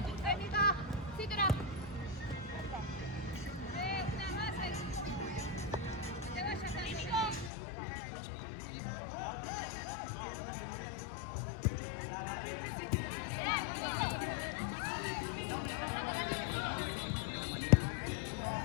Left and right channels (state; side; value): drops out; right; at 7.5 s